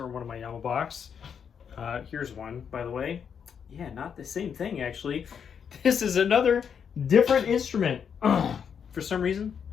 one of my Yamabox. Here's one, by the way. Yeah, not the same thing actually. This is another different instrument. For some reason,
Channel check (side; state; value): right; quieter; 7.3 dB